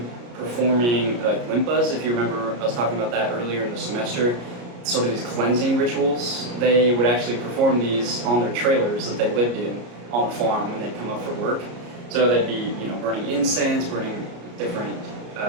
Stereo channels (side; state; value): left; late; 33 ms